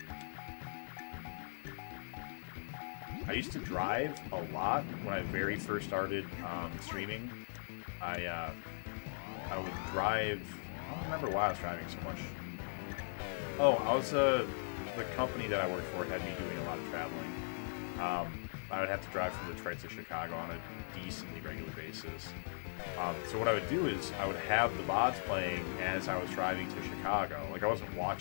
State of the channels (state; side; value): silent; right; digital silence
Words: I used to drive a lot when I very first started streaming. I would drive. I don't remember why I was driving so much. Oh, I was the company that I worked for had me doing a lot of traveling. I would have to drive from Detroit to Chicago on a decently regular basis. So what I would do is I would have the VODs playing as I was driving to Chicago. Like I wasn't